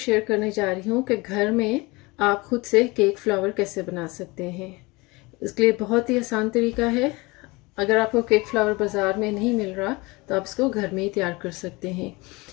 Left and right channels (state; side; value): quieter; right; 24.2 dB